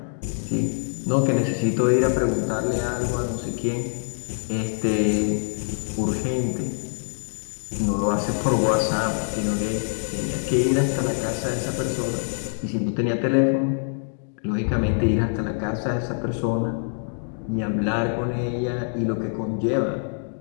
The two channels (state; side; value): silent; right; digital silence